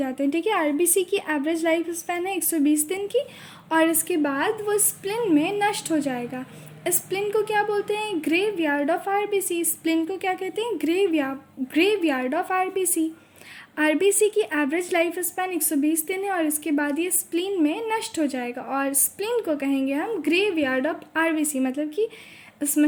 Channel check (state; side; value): identical; both; correlation 1.00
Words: हैं, ठीक है। आरबीसी की एवरेज लाइफ स्पैन है 120 दिन की और इसके बाद वो स्प्लीन में नष्ट हो जाएगा। स्प्लीन को क्या बोलते हैं? Graveyard of RBC. स्प्लीन को क्या कहते हैं? Graveyard of RBC. आरबीसी की एवरेज लाइफ स्पैन 120 दिन है और इसके बाद ये स्प्लीन में नष्ट हो जाएगा और स्प्लीन को कहेंगे हम ग्रेवयार्ड ऑफ आरबीसी, मतलब कि